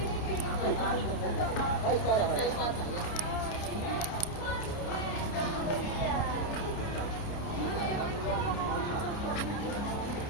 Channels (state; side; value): late; right; 29 ms